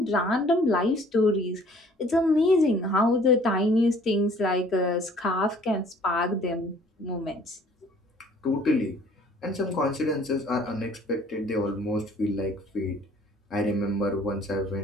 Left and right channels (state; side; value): normal; both; correlation 0.55